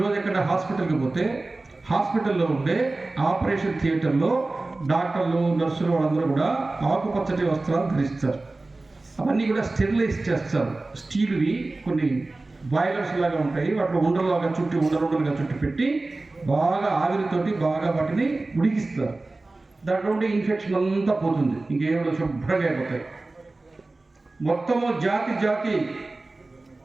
ఎక్కడ హాస్పిటల్కి పోతే హాస్పిటల్లో ఉండే ఆపరేషన్ థియేటర్లో డాక్టర్లు, నర్సులు వాళ్ళందరూ కూడా ఆకుపచ్చటి వస్త్రాలు ధరిస్తారు. అవన్నీ కూడా స్టెరిలైజ్ చేస్తారు. స్టీల్వి కొన్ని బాయిలర్స్ లాగా ఉంటాయి, వాటిలో ఉండలుగా చుట్టి పెట్టి బాగా ఆవిరితోటి బాగా వాటిని ఉడికిస్తారు. దాంట్లో ఉండే ఇన్ఫెక్షన్ అంతా పోతుంది, ఇంకేమో శుభ్రంగా అయిపోతాయి. మొత్తము జాతి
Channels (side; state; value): left; quieter; 3.2 dB